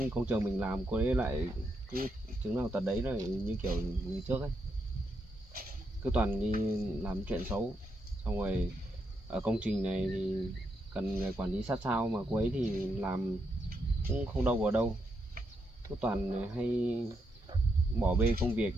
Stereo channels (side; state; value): both; normal; correlation 0.81